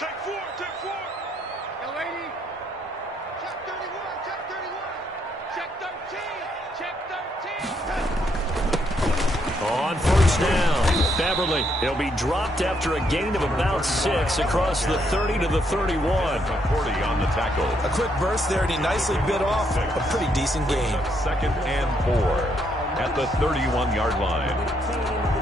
4, check 4. Yo, 80. Check 31, check 31. Check 13, check 13. On first down, Beverly. He'll be dropped after a gain of about 6 across the 30 to the 31. 40 on the tackle. A quick burst there, and he nicely bit off a pretty decent gain. 2nd and 4 at the 31-yard line.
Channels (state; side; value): normal; both; correlation 0.74